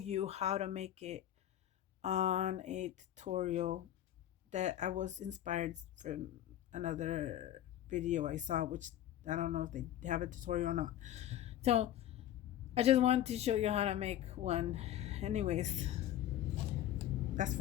how to make it on a tutorial that I was inspired from another video I saw, which I don't know if they have a tutorial or not. So I just wanted to show you how to make one. Anyways, that's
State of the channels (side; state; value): right; quieter; 12.0 dB